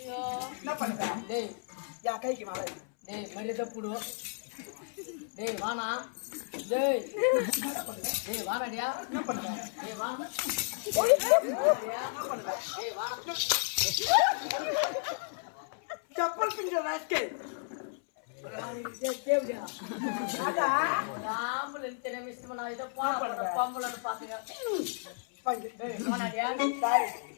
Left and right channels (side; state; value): right; silent; 56 dB below the other